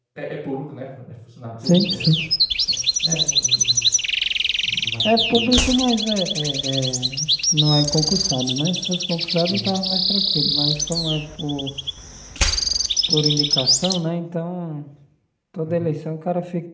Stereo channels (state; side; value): identical; both; correlation 1.00